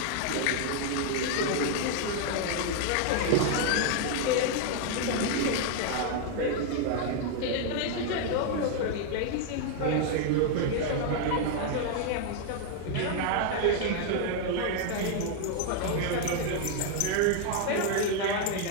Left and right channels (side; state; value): both; different; correlation 0.00